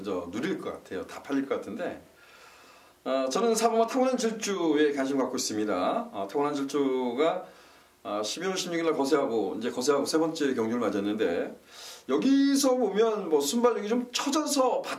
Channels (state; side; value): identical; both; correlation 1.00